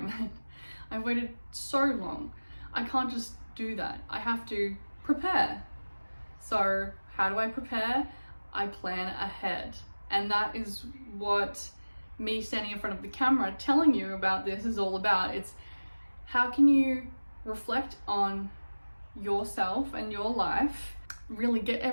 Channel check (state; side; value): inverted; both; correlation -1.00